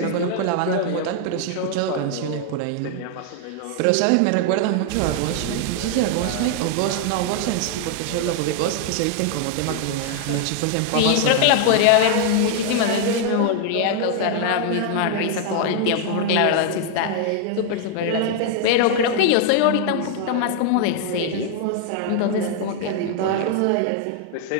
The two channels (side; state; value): both; different; correlation 0.00